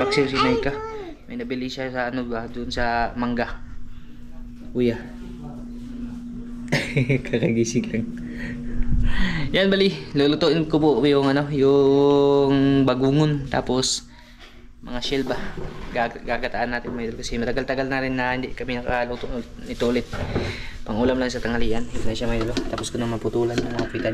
si Naika. May nabili siya sa ano ba, dun sa mangga. Kuya. Kakagising lang. Yan, bali, lulutuin ko po yung ano, yung bagungon, tapos mga shell ba. Gagataan natin, mga idol, kasi matagal-tagal na rin na hindi kami nakaluto nito ulit. Pangulam lang sa tanghalian. Ito na siya, mga idol. Tapos ko na maputulan ng mga pitan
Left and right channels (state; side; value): identical; both; correlation 1.00